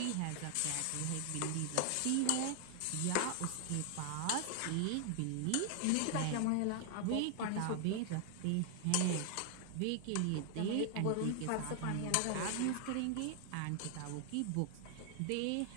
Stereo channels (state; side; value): different; both; correlation 0.00